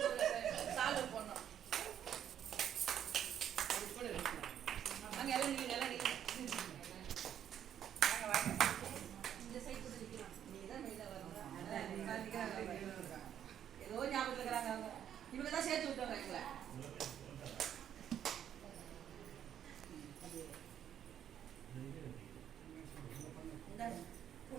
சால்வ் பண்ணோம். வாங்க எல்லாம் நீங்க வாங்க வாங்க இந்த சைடு கூட நிற்கலாம். நீங்க தான் வெளியில வரணும். ஏதோ ஞாபகத்தில் இருக்கிறாங்க. அவங்க இவங்க தான் சேர்த்து விட்டவங்க எங்களை.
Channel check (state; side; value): quieter; left; 9.8 dB